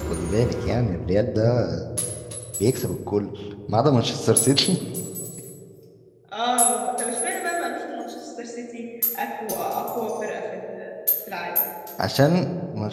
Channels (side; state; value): both; identical; correlation 1.00